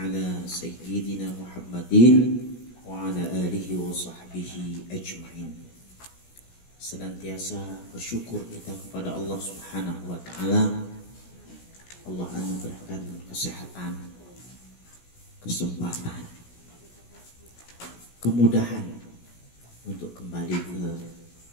sayyidina Muhammadin wa ala alihi wa sahbihi ajma'in. Senantiasa bersyukur kita kepada Allah Subhanahu wa taala. Allah anugerahkan kesehatan, kesempatan, kemudahan untuk kembali ke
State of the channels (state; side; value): late; right; 17 ms